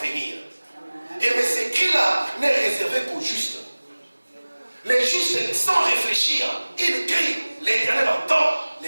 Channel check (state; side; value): inverted; both; correlation -1.00